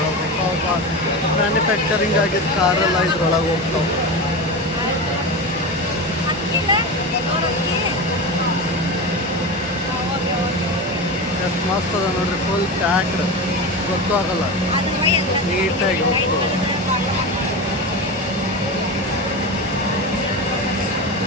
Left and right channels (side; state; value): both; normal; correlation 0.23